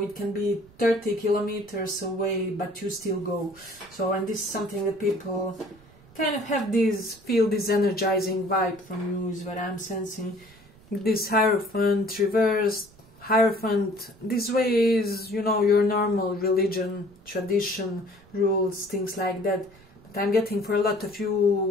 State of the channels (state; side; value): noise; right; rumble, 26 dB below the sound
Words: it can be 30 kilometers away, but you still go. So, and this is something that people kind of have feel this energizing vibe from you is what I'm sensing. This Hierophant, reversed Hierophant, this way is, you know, your normal religion, tradition, rules, things like that. But I'm getting for a lot of